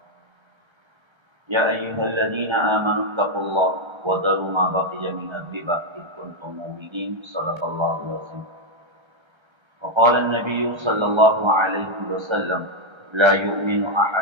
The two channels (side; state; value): left; late; 1.3 ms